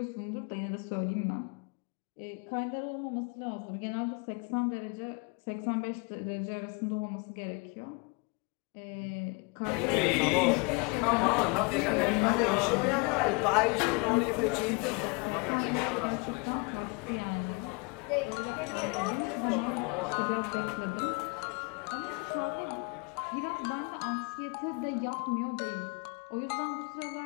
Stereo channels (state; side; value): quieter; right; 31.0 dB